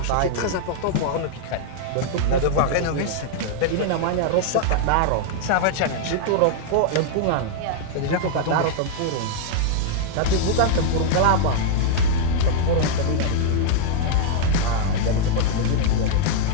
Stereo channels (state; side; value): different; both; correlation -0.01